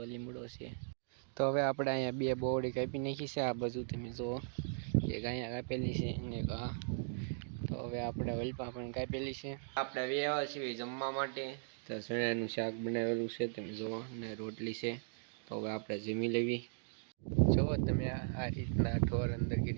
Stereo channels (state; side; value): silent; left; digital silence